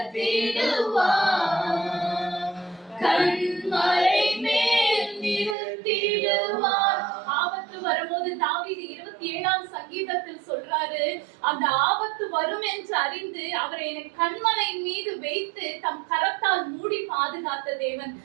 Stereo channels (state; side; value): drops out; left; at 5.6 s